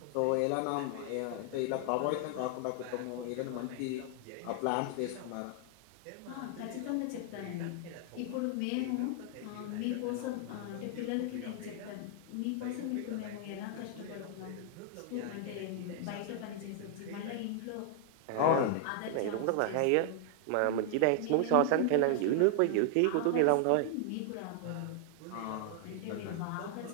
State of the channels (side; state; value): both; different; correlation 0.00